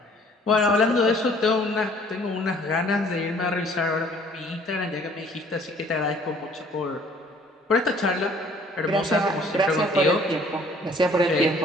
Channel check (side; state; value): both; normal; correlation 0.57